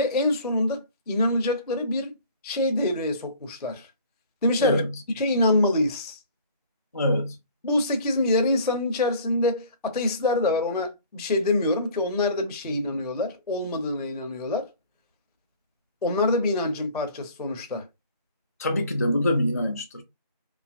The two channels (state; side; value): inverted; both; correlation -0.50